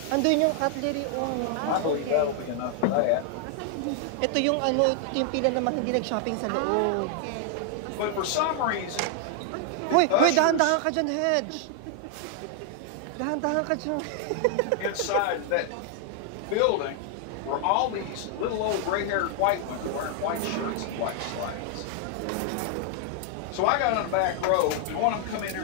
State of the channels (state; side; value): different; both; correlation 0.00